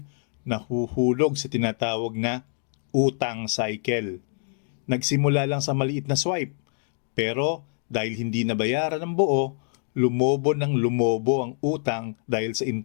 nahuhulog sa tinatawag na utang cycle. Nagsimula lang sa maliit na swipe, pero dahil hindi nabayaran ng buo, lumobo ang utang dahil sa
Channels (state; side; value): silent; right; 55 dB below the other